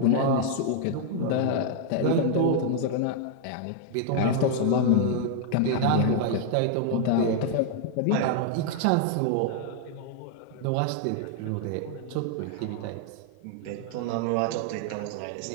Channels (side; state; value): both; different; correlation 0.00